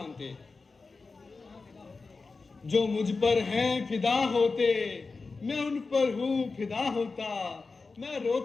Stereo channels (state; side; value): quieter; right; 4.1 dB